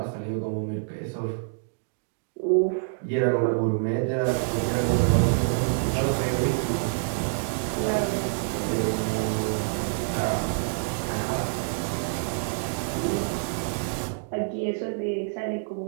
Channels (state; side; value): silent; left; digital silence